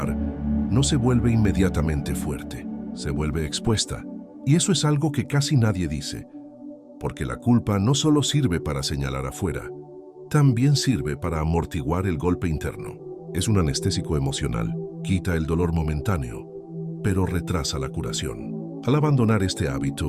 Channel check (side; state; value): both; identical; correlation 1.00